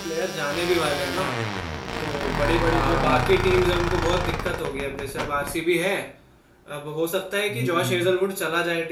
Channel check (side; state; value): both; identical; correlation 1.00